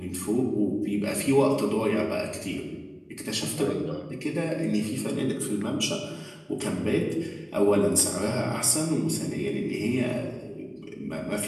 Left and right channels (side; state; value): both; identical; correlation 1.00